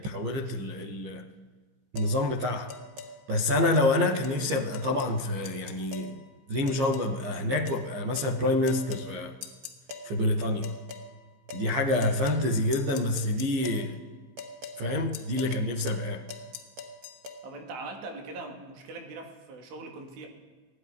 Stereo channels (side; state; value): left; late; 15 ms